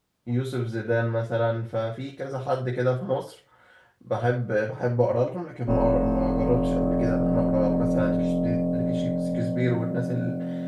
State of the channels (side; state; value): both; identical; correlation 1.00